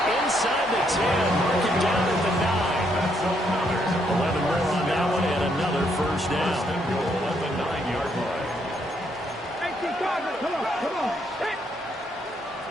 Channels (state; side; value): normal; both; correlation 0.74